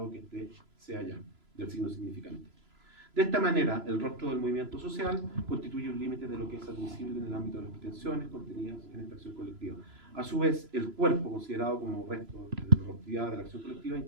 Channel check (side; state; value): left; late; 3.0 ms